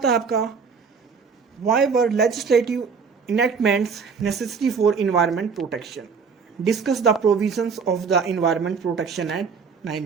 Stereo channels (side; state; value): left; quieter; 5.6 dB